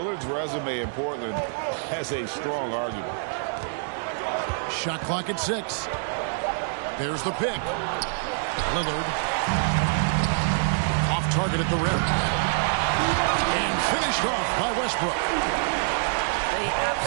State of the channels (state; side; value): silent; left; digital silence